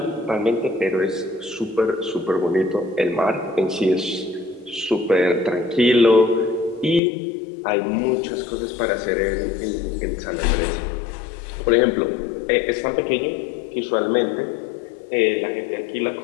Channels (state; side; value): drops out; right; at 7.0 s